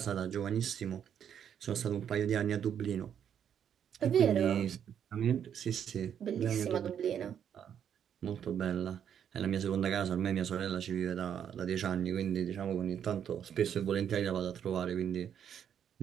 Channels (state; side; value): quieter; left; 8.8 dB